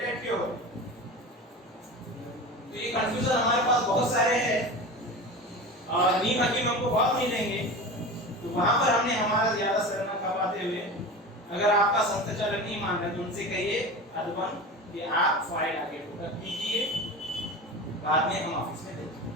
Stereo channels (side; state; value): both; normal; correlation 0.30